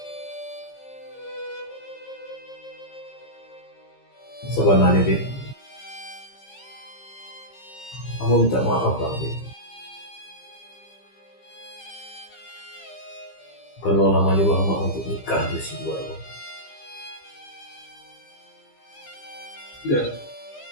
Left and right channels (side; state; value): right; late; 15 ms